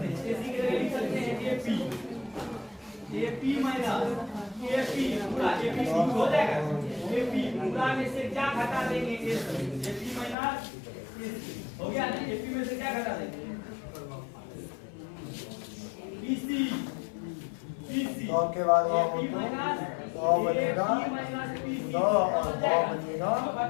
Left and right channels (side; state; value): right; drops out; at 10.4 s